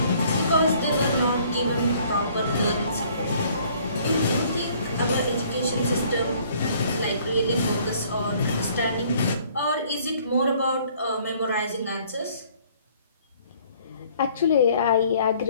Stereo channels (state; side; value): inverted; both; correlation -0.59